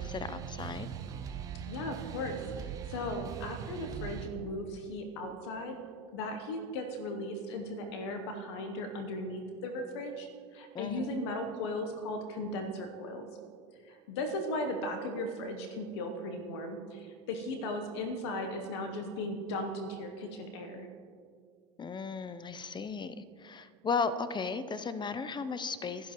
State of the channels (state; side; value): normal; both; correlation 0.17